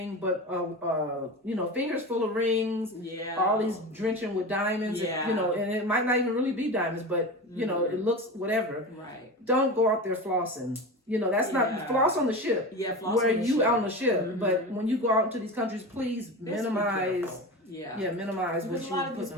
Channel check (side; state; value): both; normal; correlation 0.27